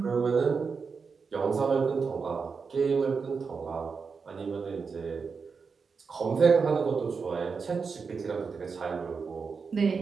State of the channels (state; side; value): quieter; left; 5.3 dB